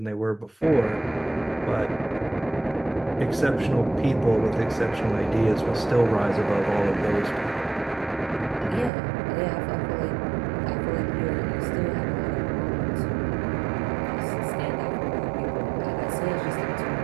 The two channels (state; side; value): drops out; left; at 8.9 s